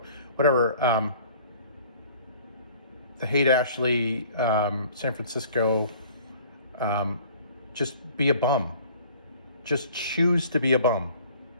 whatever. The Haight-Ashbury, San Francisco, just be a bum. Just choose to be a bum.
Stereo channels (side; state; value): both; inverted; correlation -0.52